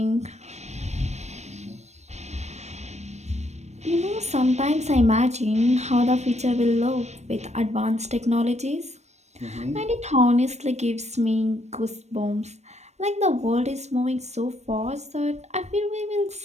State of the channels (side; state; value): left; late; 0.32 ms